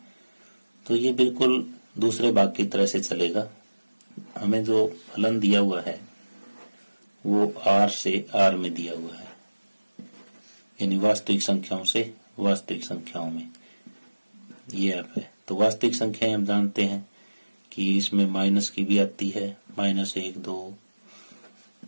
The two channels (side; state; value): both; inverted; correlation -1.00